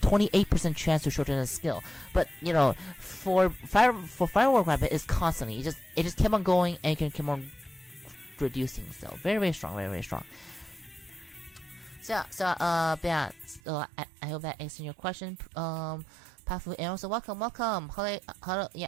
chance to shorten a skill, but for Firework Rabbit it's constantly, it just kept on going and can keep on reducing. So very strong. But yeah, so I hope that answered your question, Pafu, and also welcome. Hello, yeah,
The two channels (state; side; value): drops out; left; at 13.6 s